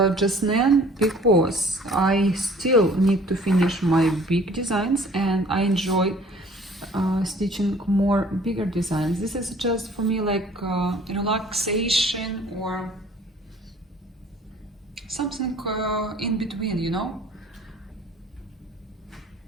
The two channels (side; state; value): both; normal; correlation 0.53